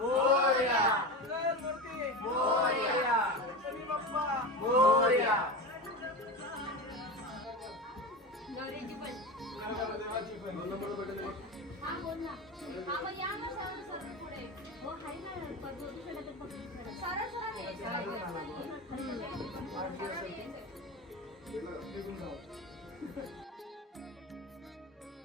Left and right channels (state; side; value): normal; both; correlation 0.24